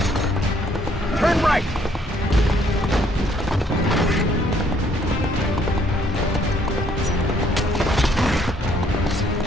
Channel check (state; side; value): normal; both; correlation 0.66